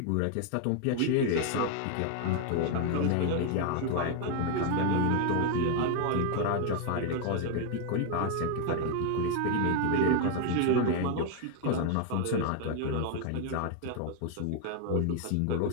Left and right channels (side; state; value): both; different; correlation 0.01